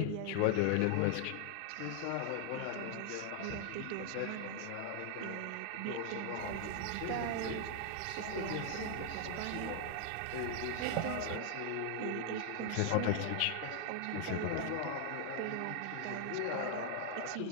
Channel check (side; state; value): both; different; correlation 0.00